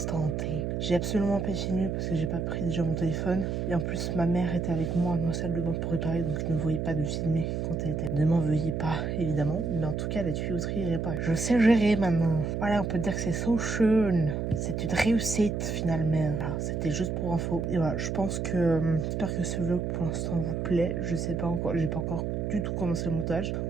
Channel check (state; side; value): noise; right; hum, 1 dB below the sound